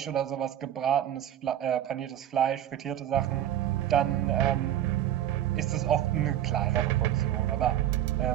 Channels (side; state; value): left; quieter; 11.5 dB